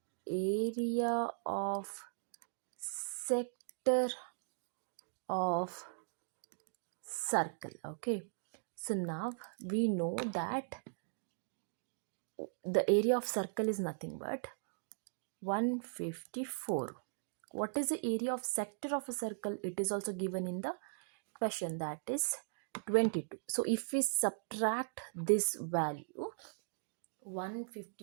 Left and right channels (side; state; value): left; silent; digital silence